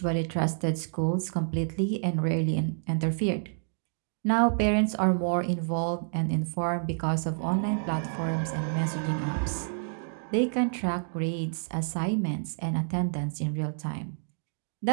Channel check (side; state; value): left; silent; digital silence